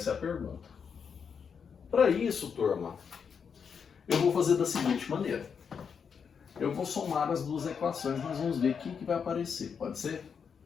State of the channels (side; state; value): right; quieter; 6.6 dB